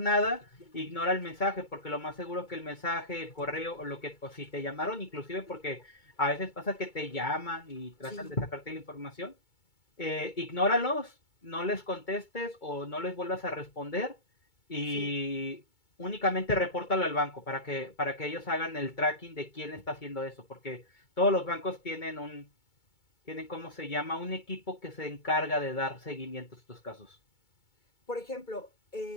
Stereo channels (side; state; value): right; late; 2.2 ms